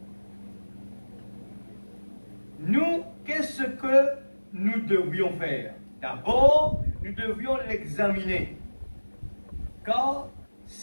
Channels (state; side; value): inverted; both; correlation -1.00